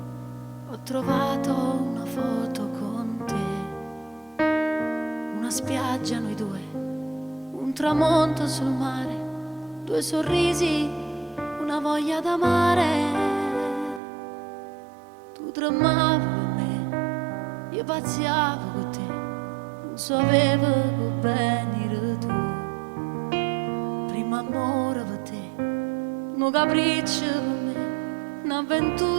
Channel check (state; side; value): drops out; left; at 14.0 s